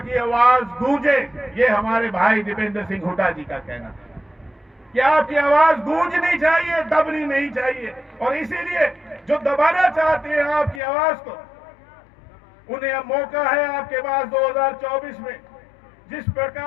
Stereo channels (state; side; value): drops out; right; at 10.8 s